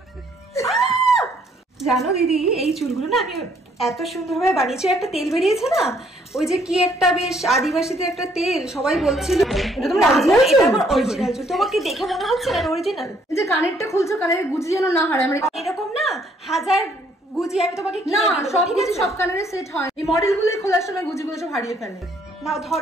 জানো দিদি, এই চুলগুলো না আমি এত সুন্দরভাবে বানিয়েছি। একটা তেল বেরিয়েছে না, ওই যে কি একটা বেশ আদিবাসীতে একটা তেল, সবাই বলছিল এটা তোমার অরিজিনাল চুল? আমার অরিজিনাল চুল। তোমাকে দেখে মনে হচ্ছে না অরিজিনাল? যে কানেরটা খুলছো, কানের গুজি যেন না হারায়। আমরা এরকম না হাজার গুজি আমি তোমাকে না, সব গুজি সব কানের সেট হয়। এই মডেলগুলো খোলার সময় গুজিগুলো সব হারিয়ে ফেলে। নাও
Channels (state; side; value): normal; both; correlation 0.66